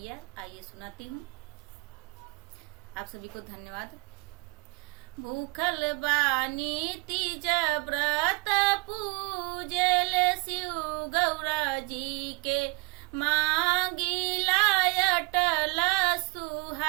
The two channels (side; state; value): left; quieter; 28.3 dB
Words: आइए सुनाती हूँ। आप सभी को धन्यवाद। भूखल बानी तीज व्रत पूजल शिव गौरा जी के, मांगिला अटल